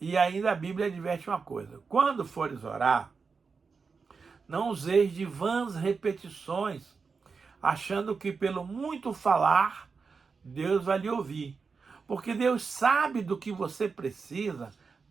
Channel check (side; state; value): left; quieter; 5.0 dB